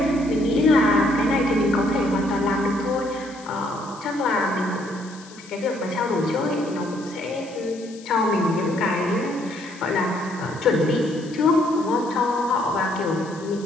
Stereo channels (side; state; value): left; noise; hiss, 21 dB below the sound